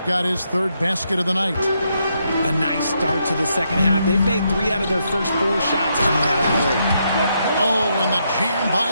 got his third basket of the night. A nice start to the second half. They've made 3 out of their first 4 shots coming out of the break. Oh, and the jam by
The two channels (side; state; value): both; inverted; correlation -0.79